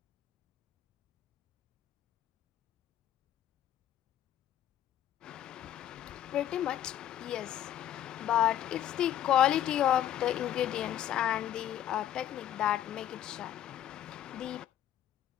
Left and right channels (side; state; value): right; quieter; 11.3 dB